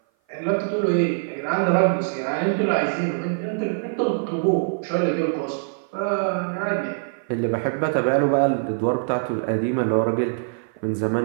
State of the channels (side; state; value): left; silent; 56 dB below the other